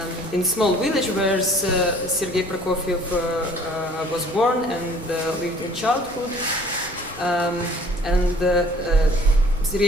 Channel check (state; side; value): normal; both; correlation 0.53